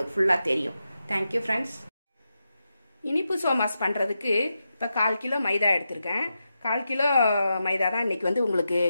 ஃபுல்லாக தெரியும். Thank you friends. இனிப்பு சோமாஸ் பண்ணுறதுக்கு இப்போ 1/4 கிலோ மைதா எடுத்திருக்கேன். 1/4 கிலோ மைதா தான் இன்றைக்கி உங்களுக்கு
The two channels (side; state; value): both; inverted; correlation -0.88